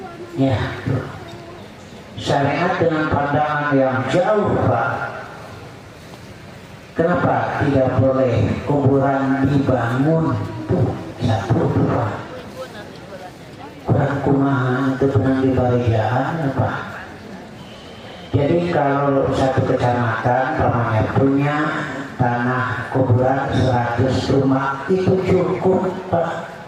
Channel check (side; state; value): both; identical; correlation 1.00